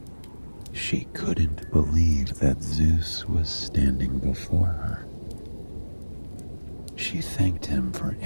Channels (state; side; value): inverted; both; correlation -1.00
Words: She couldn't believe that Zeus was standing before her. She thanked him for